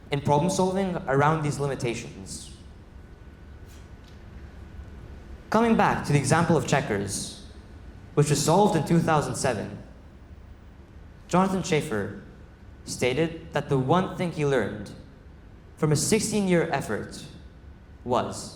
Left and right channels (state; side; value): identical; both; correlation 1.00